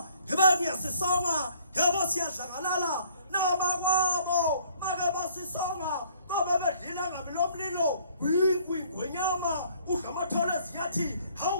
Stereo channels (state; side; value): inverted; both; correlation -0.59